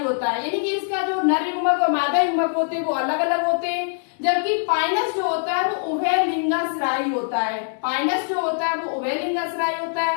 होता है, यानी कि इसका जो नर युग्मक और मादा युग्मक होते हैं वो अलग अलग होते हैं, जबकि पाइनस जो होता है वो उभय लिंगाश्रायी होता है। पाइनस जो होता है वो उभय लिंगाश्रायी होता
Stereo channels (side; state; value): right; silent; 64 dB below the other